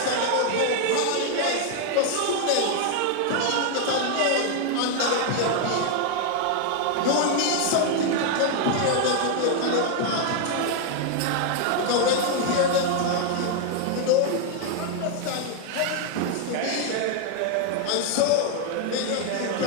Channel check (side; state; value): both; different; correlation 0.00